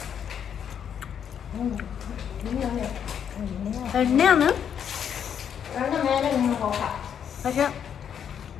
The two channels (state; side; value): quieter; right; 8.3 dB